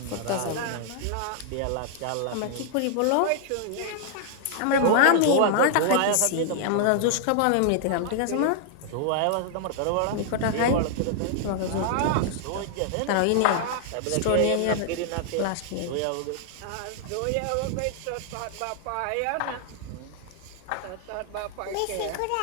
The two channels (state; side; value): different; both; correlation -0.01